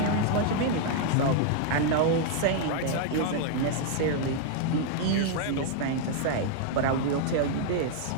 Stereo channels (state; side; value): different; both; correlation 0.00